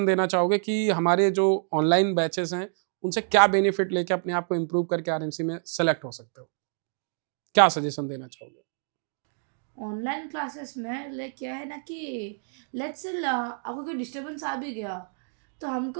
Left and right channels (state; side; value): silent; left; digital silence